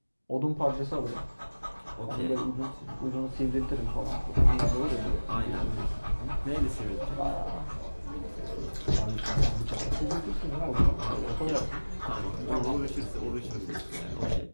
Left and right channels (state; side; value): inverted; both; correlation -1.00